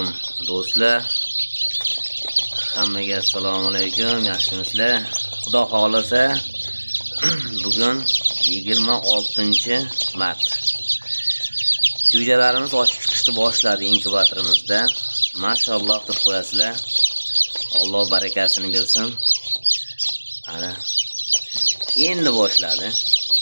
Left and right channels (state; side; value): inverted; both; correlation -1.00